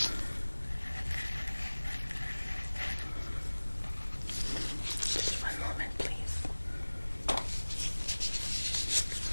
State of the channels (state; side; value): inverted; both; correlation -1.00